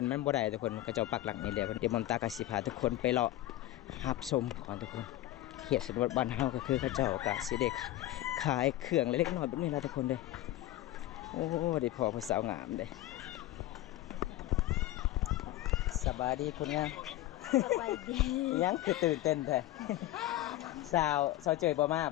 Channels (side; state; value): right; quieter; 15.2 dB